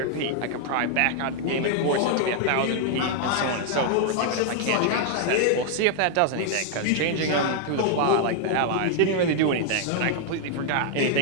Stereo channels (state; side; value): different; both; correlation 0.00